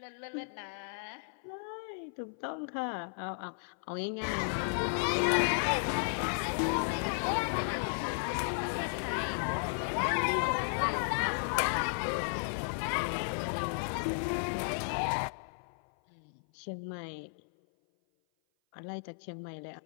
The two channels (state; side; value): silent; right; 55 dB below the other